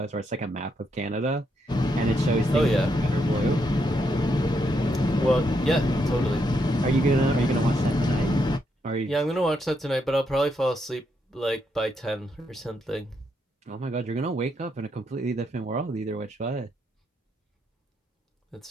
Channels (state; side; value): normal; both; correlation 0.79